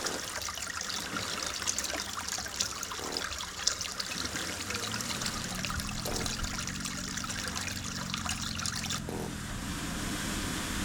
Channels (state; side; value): identical; both; correlation 1.00